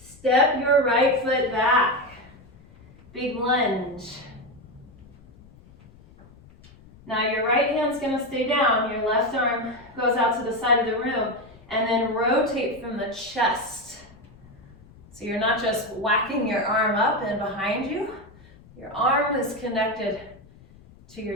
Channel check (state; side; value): noise; left; rumble, 24 dB below the sound